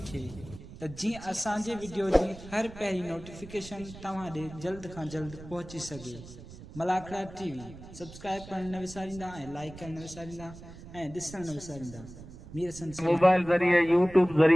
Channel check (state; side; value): noise; right; rumble, 16 dB below the sound